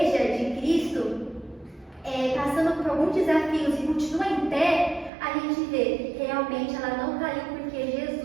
de Cristo passando por alguns desafios e continua em pé, a gente vê, realmente ela não caiu porque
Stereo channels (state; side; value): drops out; left; at 5.1 s